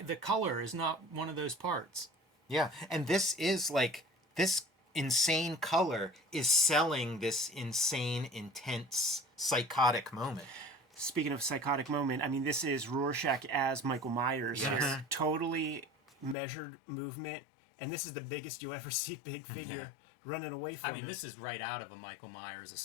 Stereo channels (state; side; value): drops out; right; at 16.4 s